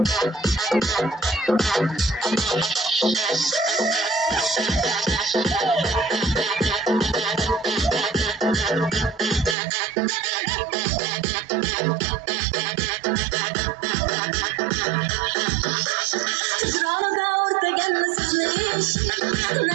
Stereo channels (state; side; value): drops out; left; at 9.6 s